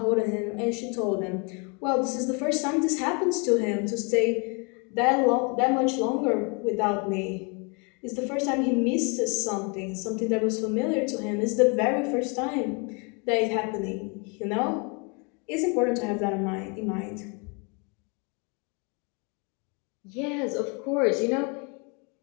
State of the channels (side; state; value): right; quieter; 33.1 dB